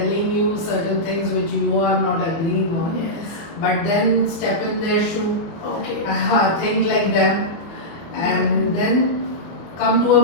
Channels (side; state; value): right; late; 24 ms